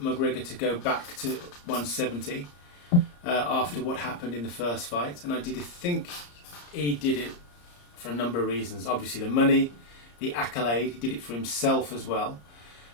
McGregor to go back to 170 after what happened in the first fight, and I think he did it for a number of reasons. Obviously the money, the accolade, he did it for himself as well,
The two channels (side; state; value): right; late; 34 ms